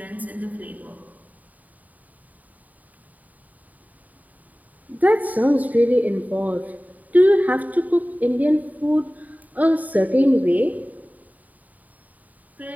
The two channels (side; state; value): left; late; 0.075 ms